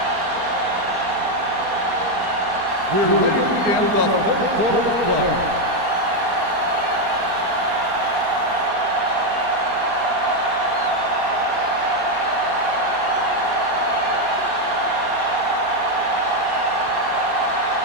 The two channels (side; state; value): left; late; 4.2 ms